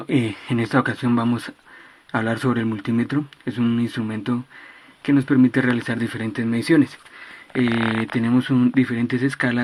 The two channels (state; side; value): identical; both; correlation 1.00